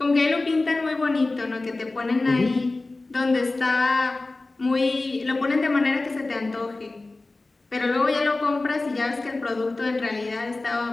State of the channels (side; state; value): right; quieter; 3.2 dB